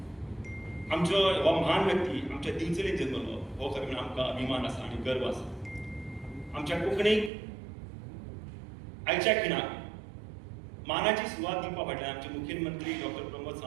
आमचो हो महान व्यक्ती आमच्या दिवचलीत जल्मलो हो खरें आमकां अभिमान आसा आनी गर्व आसा. आमच्या कोंकणीक आयच्या खिणाक मानाची सुवात दिवपा फाटल्यान आमचे मुखेलमंत्री डॉक्टर प्रमोद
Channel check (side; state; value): left; drops out; at 7.3 s